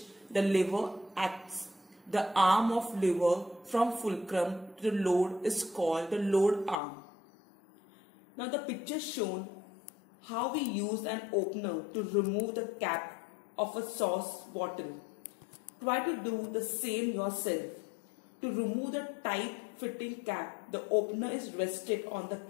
the lever acts. The arm of lever from fulcrum to the load is called the load arm. Now the picture shown how we use an opener to remove the cap of a sauce bottle. Try to do the same yourself. To remove the tight fitting cap, the opener is rested on the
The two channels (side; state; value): right; drops out; at 6.8 s